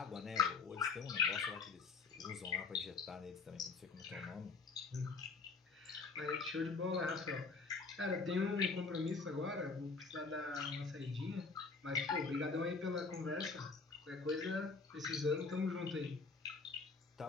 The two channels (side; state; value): right; quieter; 4.5 dB